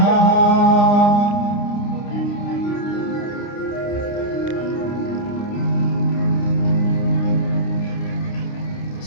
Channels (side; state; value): right; late; 29 ms